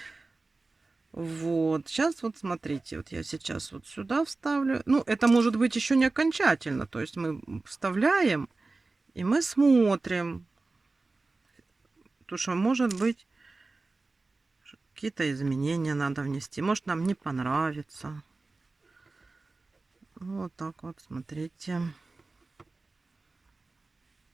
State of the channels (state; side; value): quieter; left; 3.5 dB